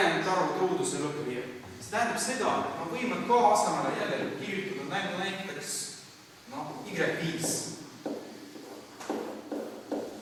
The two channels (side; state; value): both; identical; correlation 1.00